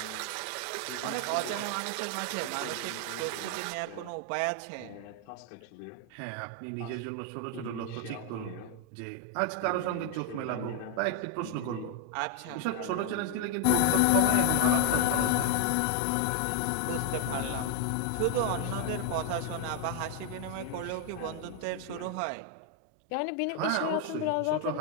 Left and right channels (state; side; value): different; both; correlation 0.00